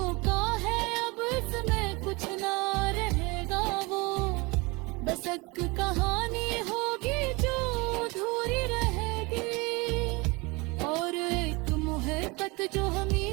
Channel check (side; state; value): left; quieter; 25.9 dB